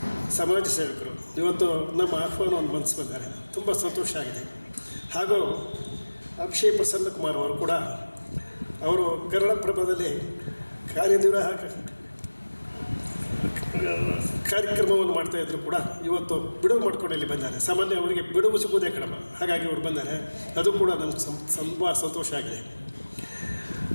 ಸಮಾಜ ಸೇವಕರು. ಇವತ್ತು ನಮ್ಮ ಆಹ್ವಾನವನ್ನು ಮನಸ್ಸು ಬಂದರೆ ತುಂಬ ಸಂತೋಷ ಆಗಿದೆ. ಹಾಗೂ ಅಕ್ಷಯ್ ಪ್ರಸನ್ನ ಕುಮಾರ್ ಅವರು ಕೂಡ ಅವರು ಕನ್ನಡಪ್ರಭದಲ್ಲಿ ಕಾರ್ಯನಿರ್ವಾಹಕ ಕಾರ್ಯಕ್ರಮವನ್ನು ಮಾಡ್ತಾಯಿದ್ರು ಕೂಡ ಇವತ್ತು ಬಿಡುವು ಮಾಡ್ಕೊಂಡು ಇಲ್ಲಿ ಬಂದ್ದಾರೆ. ಸಾಮಾನ್ಯ ಅವರಿಗೆ ಬಿಡುವು ಸಿಗುವುದೇ ಕಡಿಮೆ, ಹಾಗಾಗಿ ಅವರು ಬಂದ್ದಾರೆ. ಅದು ಕೂಡ ನಮ್ಗೆ ತುಂಬ ಸಂತೋಷ ಆಗಿದೆ.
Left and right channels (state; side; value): inverted; both; correlation -1.00